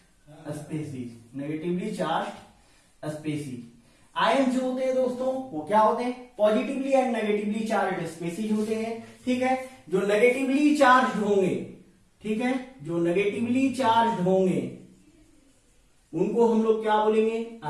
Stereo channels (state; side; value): identical; both; correlation 1.00